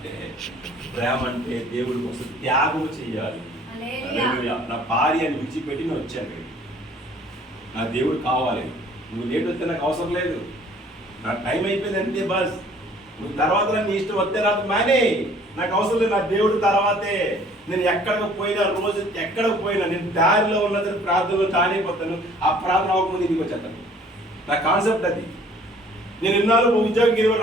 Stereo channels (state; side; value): normal; both; correlation 0.55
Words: ప్రేమ అంటే దేవుడి కోసం త్యాగం చేయాలి. నా భార్యని విడిచిపెట్టి నేను వచ్చాను, నా దేవుడు కావాలి. నువ్వు లేట్ వస్తే నాకు అవసరం లేదు, నా టైం అయిపోయింది అంతే బస్. నువ్వు తర్వాత నీ ఇష్టం వస్తే రాదు మానే, నాకు అవసరం లేదు. నా దేవుడు తర్వాతే. నేను ఎక్కడికి పోయినా, రోజు ఎక్కడికి పోయినా నేను దారిలో ఉన్నదని ప్రార్థనలో తానైపోతాను. ఆ ప్రార్థన అవ్వకముందు ఇంటికి వచ్చేస్తాను. నా కాన్సెప్ట్ అది. నేను ఇన్నాళ్ళు ఉద్యోగం 20